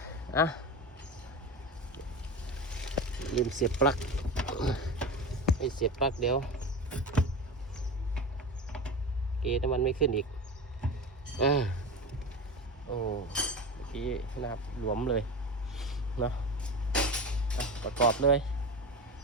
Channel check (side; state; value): both; normal; correlation 0.26